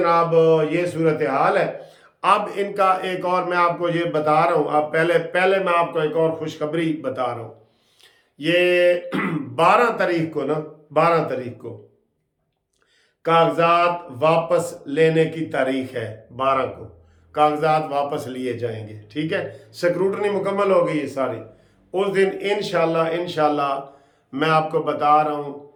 یہ صورتحال ہے۔ اب ان کا ایک اور میں آپ کو یہ بتا رہا ہوں، اب پہلے میں آپ کو ایک اور خوشخبری بتا رہا ہوں۔ یہ 12 تاریخ کو 12 تاریخ کو کاغذات واپس لینے کی تاریخ ہے، 12 کو کاغذات واپس لیے جائیں گے، ٹھیک ہے، سکروٹنی مکمل ہو گئی ہے ساری۔ اس دن انشاءاللہ میں آپ کو بتا رہا ہوں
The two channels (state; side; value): identical; both; correlation 1.00